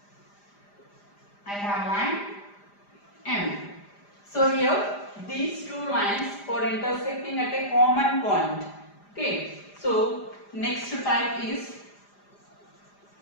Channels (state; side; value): late; right; 5.0 ms